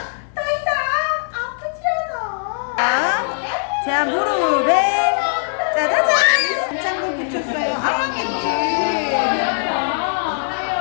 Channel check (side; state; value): right; silent; digital silence